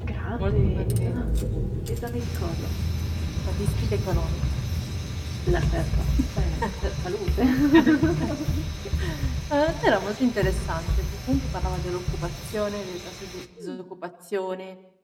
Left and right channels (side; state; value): both; identical; correlation 1.00